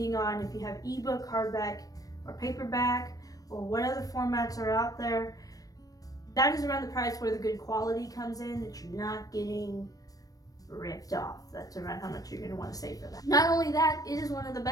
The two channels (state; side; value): late; right; 0.18 ms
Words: on if you have ebook, hardback, or paperback, or what other formats are out there. That is around the price where the good quality comes in, that you're not getting ripped off. That's around how much you're going to want to save for that. Not only that, it is one of the